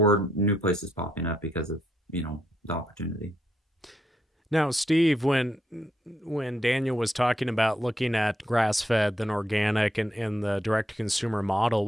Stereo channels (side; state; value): both; normal; correlation 0.78